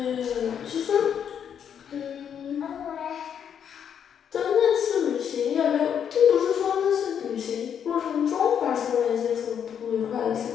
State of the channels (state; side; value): quieter; right; 8.3 dB